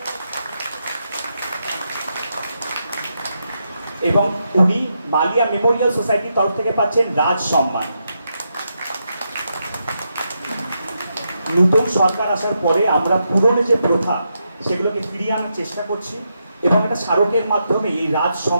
এবং উনি মালিয়া মেমোরিয়াল সোসাইটির তরফ থেকে পাচ্ছেন রাজ সম্মান। নতুন সরকার আসার পরে আমরা পুরনো যে প্রথা সেগুলোকে ফিরিয়ে আনার চেষ্টা করছি, এবং একটা স্মারকের মাধ্যমে এই রাজ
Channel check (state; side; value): inverted; both; correlation -0.83